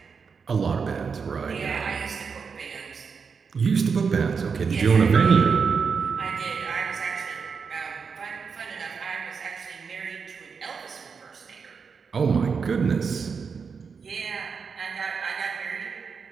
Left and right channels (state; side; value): quieter; left; 5.7 dB